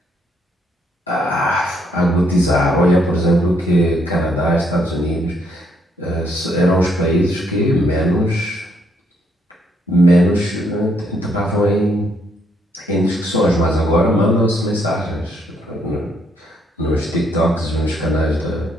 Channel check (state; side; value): normal; both; correlation 0.72